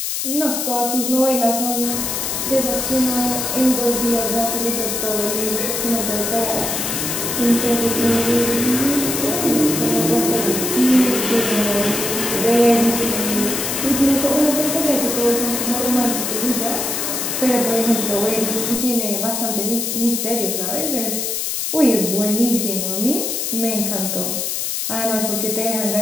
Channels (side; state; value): left; noise; hiss, 2 dB below the sound